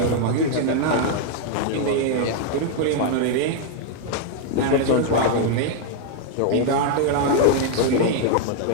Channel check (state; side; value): different; both; correlation 0.00